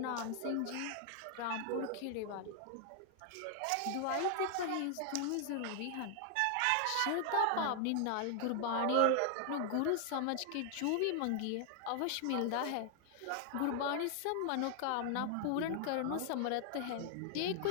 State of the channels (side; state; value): both; different; correlation 0.00